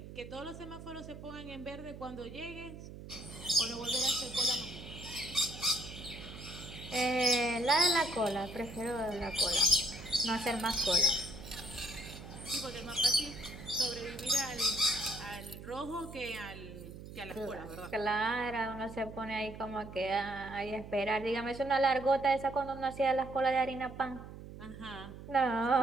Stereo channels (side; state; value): right; noise; hum, 13 dB below the sound